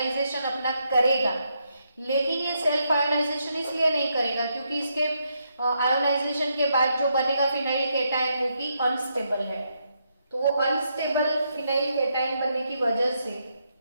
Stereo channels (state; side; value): inverted; both; correlation -0.79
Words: अपना करेगा। लेकिन ये सेल्फ आयोनाइजेशन इसलिए नहीं करेगा क्योंकि इसके आयोनाइजेशन के बाद जो बनेगा फिनाइल कैटायन वो कि अनस्टेबल है। तो वो अनस्टेबल फिनाइल कैटायन बनने की वजह से